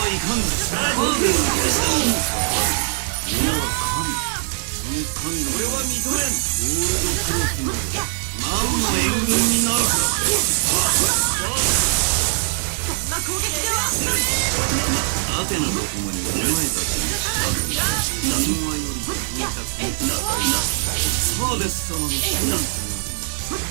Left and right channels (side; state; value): left; silent; 61 dB below the other